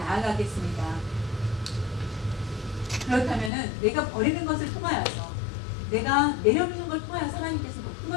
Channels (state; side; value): drops out; right; at 3.5 s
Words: 그렇다면은 내가 버리는 것을 통하여서 내가 내려놓는 걸 통하여서 하나님께서 높은